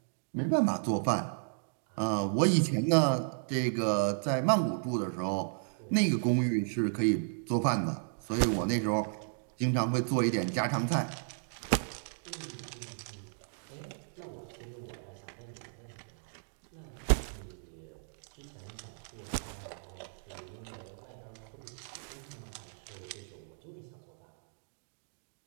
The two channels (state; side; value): silent; left; digital silence